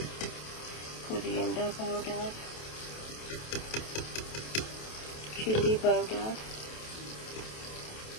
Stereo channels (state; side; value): late; right; 27 ms